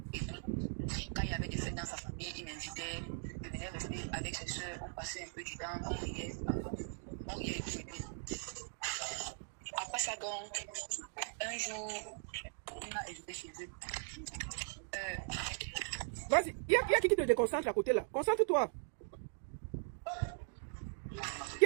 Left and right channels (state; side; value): silent; left; digital silence